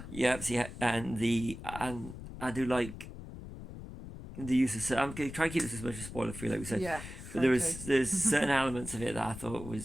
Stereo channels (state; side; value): noise; left; rumble, 12 dB below the sound